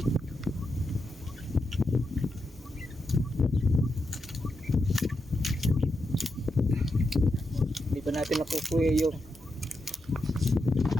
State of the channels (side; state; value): both; normal; correlation 0.86